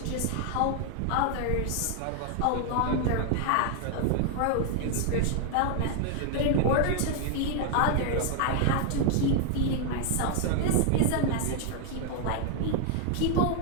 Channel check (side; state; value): both; different; correlation 0.00